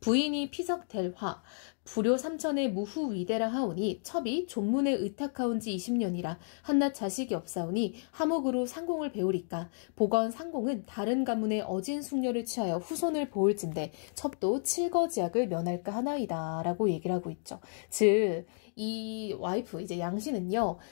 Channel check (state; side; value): silent; right; digital silence